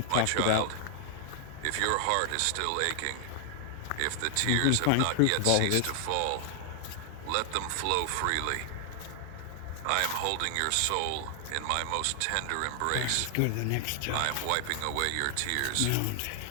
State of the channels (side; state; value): both; different; correlation 0.00